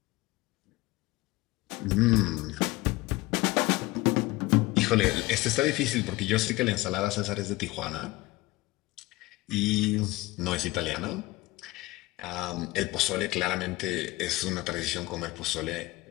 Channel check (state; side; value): quieter; right; 20.3 dB